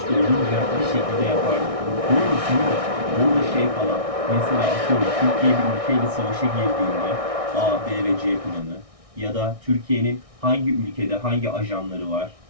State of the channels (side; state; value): left; late; 1.6 ms